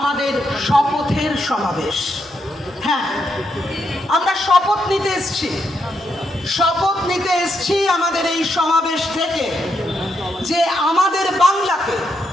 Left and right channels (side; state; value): both; normal; correlation 0.80